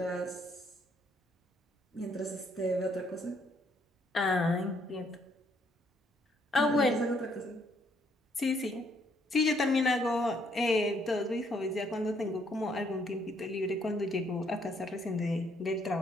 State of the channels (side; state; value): both; normal; correlation 0.69